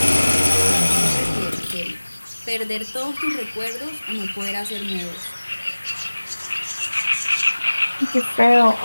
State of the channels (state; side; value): inverted; both; correlation -1.00